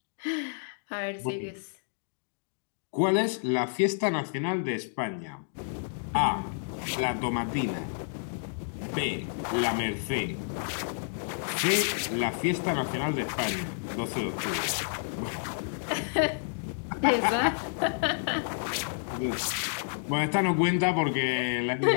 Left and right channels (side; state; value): right; silent; digital silence